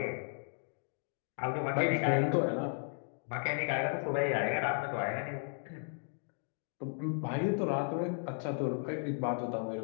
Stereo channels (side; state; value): right; silent; 54 dB below the other